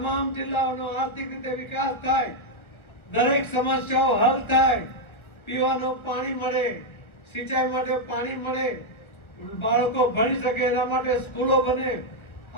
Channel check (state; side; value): late; right; 1.2 ms